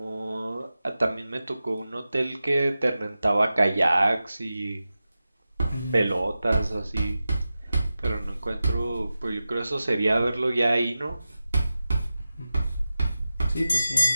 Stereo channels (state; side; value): inverted; both; correlation -0.94